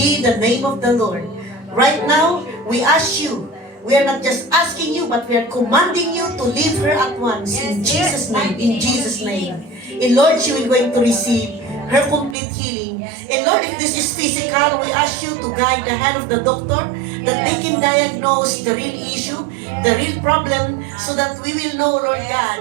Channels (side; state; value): left; drops out; at 12.4 s